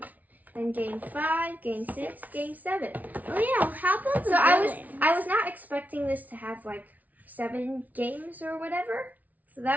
Then game 5, game 6, game 7. Oh yeah, how about the So villains? I was not expecting this to have like 7 games or whatever. So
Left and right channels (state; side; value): late; left; 0.075 ms